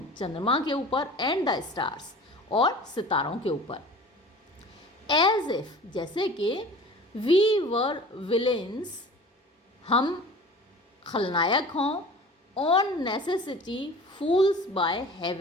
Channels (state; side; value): normal; both; correlation 0.42